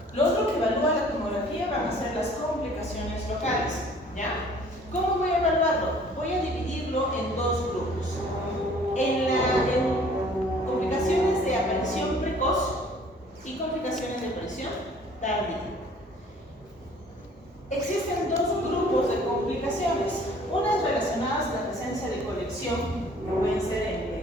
Lo otro que evalúa la tomografía van a ser las complicaciones locales. ¿Ya? ¿Cómo voy a evaluarlo? Voy a dividirlo en dos grupos. En complicaciones de aparición precoz y complicaciones de aparición tardía. Existen dos grupos de complicaciones, unas relacionadas a la presencia de colección, que pueden ser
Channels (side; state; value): both; normal; correlation 0.54